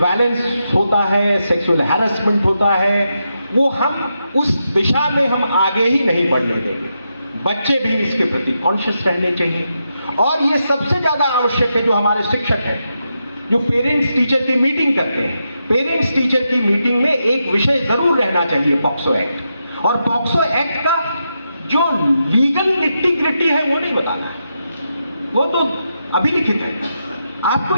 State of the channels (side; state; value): both; inverted; correlation -0.85